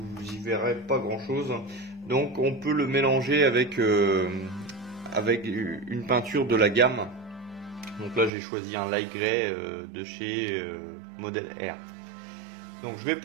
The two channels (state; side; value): drops out; left; at 8.3 s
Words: y verrez pas grand chose. Donc on peut le mélanger avec une peinture de la gamme. Donc là j'ai choisi un light grey de chez Model R. Donc je vais